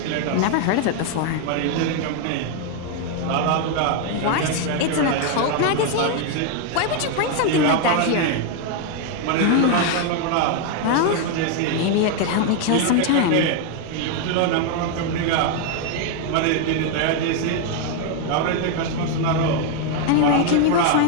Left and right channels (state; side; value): different; both; correlation 0.01